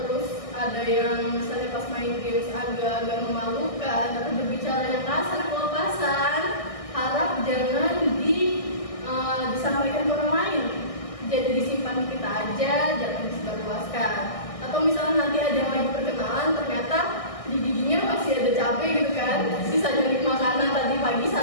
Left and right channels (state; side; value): late; right; 1.6 ms